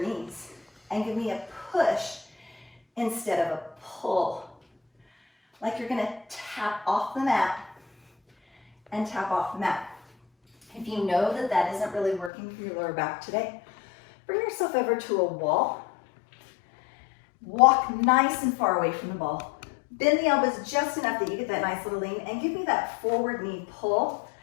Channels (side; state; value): right; drops out; at 12.3 s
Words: knees and give me a push instead of a pull. Like you're going to tap off the mat and tap off the mat. If you know that that isn't really working for your lower back today, bring yourself over to a wall. Walk nice and far away from the ball. Bend the elbows just enough that you get that nice little lean, and give me that forward knee pull